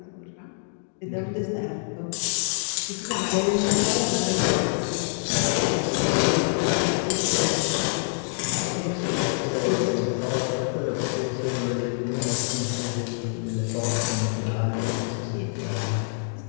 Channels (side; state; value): right; silent; digital silence